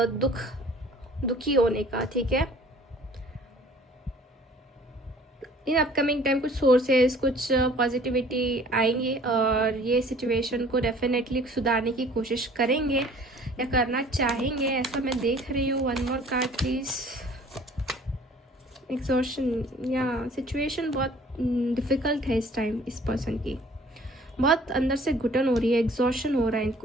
दुखी होने का, ठीक है। इन अपकमिंग टाइम कुछ सोर्सेस, कुछ पॉजिटिविटी आएंगे और ये सिचुएशन को डेफिनेटली सुधारने की कोशिश करेंगे या करना चाहेंगे, ऐसा मैं देख रही हूँ। 1 मोर कार्ड प्लीज। एग्जॉशन, या सिचुएशन बहुत डिफिकल्ट है इस टाइम इस पर्सन की, बहुत अंदर से घुटन हो रही है, एग्जॉशन हो रहा है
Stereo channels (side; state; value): both; normal; correlation 0.52